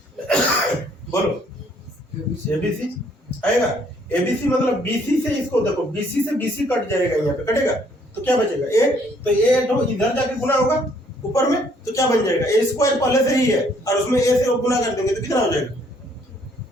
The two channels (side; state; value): both; normal; correlation 0.64